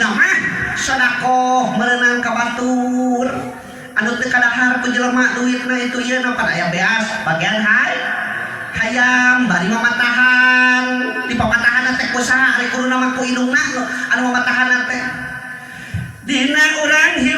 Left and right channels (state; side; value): identical; both; correlation 1.00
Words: mah sedekah merenang ka batur. Anu teu kadahar ku jelema duitna itu ieu napan aya beas bagian hayam bari mamatahan. Di pamatahan teh kusaha ari kuruna mah ku indungna anu mamatahan teh. Dina urang